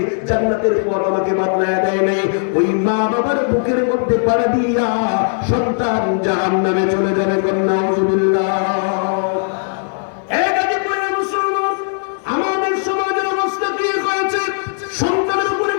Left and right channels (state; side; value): silent; right; digital silence